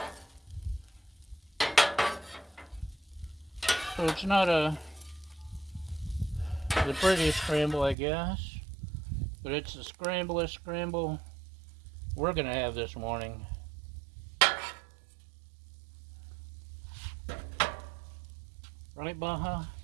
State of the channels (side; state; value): left; drops out; at 8.0 s